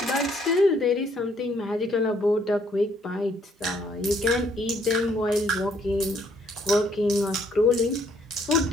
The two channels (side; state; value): both; normal; correlation 0.67